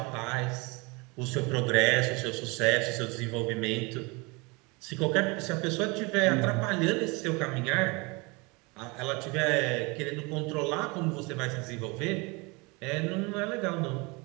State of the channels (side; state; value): left; quieter; 27.4 dB